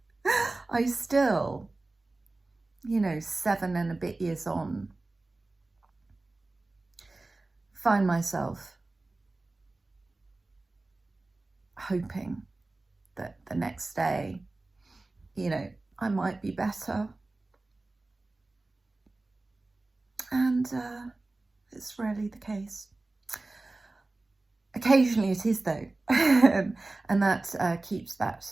still, 7 and a bit years on, find myself hoping that the next day, I might be better. And it's rarely the case. Occasionally it is, though, and that keeps that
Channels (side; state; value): left; quieter; 3.1 dB